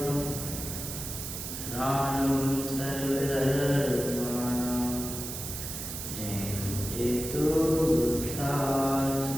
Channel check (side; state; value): right; noise; hiss, 7 dB below the sound